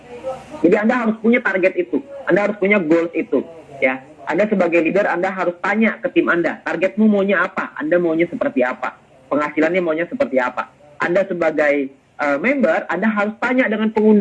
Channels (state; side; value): identical; both; correlation 1.00